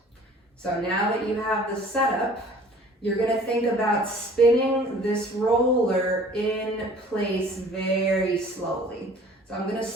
So now that you have the setup, you're gonna think about spinning this roller in place very slowly. So I'm gonna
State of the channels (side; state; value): both; normal; correlation 0.50